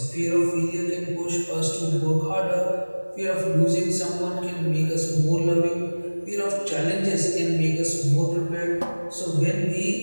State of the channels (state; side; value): inverted; both; correlation -1.00